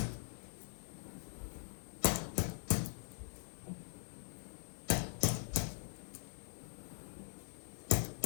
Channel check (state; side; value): silent; right; digital silence